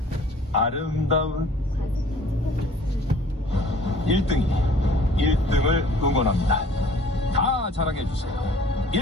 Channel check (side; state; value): both; normal; correlation 0.53